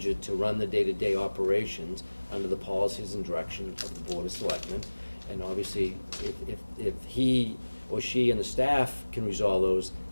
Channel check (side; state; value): both; inverted; correlation -1.00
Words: to run the day-to-day operations under the policies and direction of the Board of Selectmen. And obviously, if he or she and the staff can resolve those,